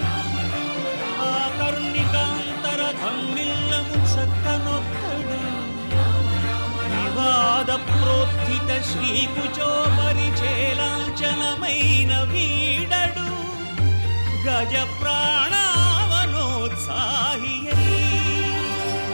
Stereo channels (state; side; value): inverted; both; correlation -1.00